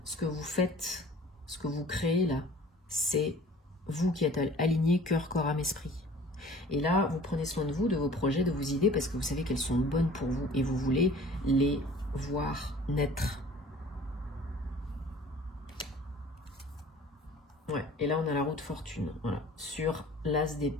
Ce que vous faites, ce que vous créez là, c'est vous qui êtes alignés cœur, corps, âme, esprit. Et là, vous prenez soin de vous, de vos projets, de vos idées, parce que vous savez qu'elles sont bonnes pour vous et vous voulez les voir naître. Ouais, et là, on a la roue de fortune, voilà, sur l'as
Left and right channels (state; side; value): normal; both; correlation 0.48